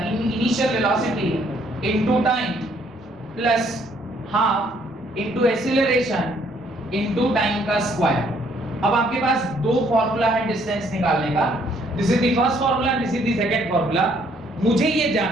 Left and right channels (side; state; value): both; normal; correlation 0.66